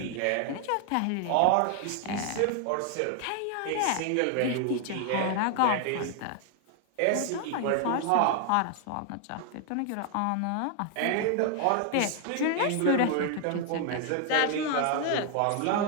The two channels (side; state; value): both; different; correlation 0.00